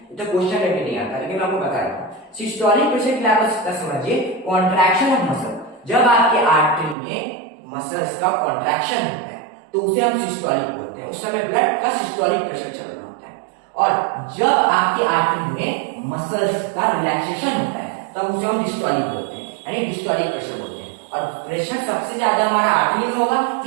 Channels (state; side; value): drops out; left; at 7.0 s